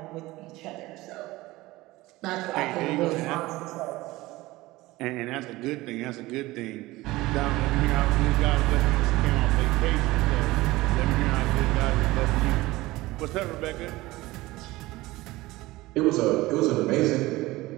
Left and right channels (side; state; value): left; quieter; 19.2 dB